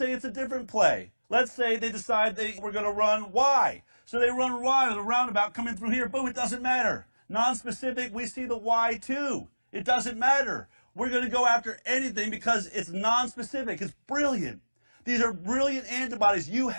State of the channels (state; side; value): inverted; both; correlation -1.00